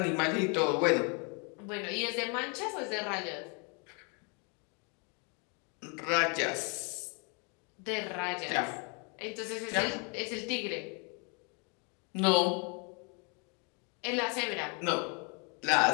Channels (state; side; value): quieter; right; 34.8 dB